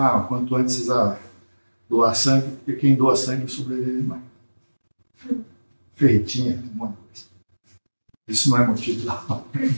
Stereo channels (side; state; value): both; inverted; correlation -1.00